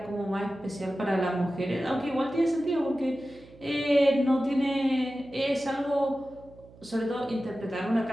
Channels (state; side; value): noise; right; hum, 23 dB below the sound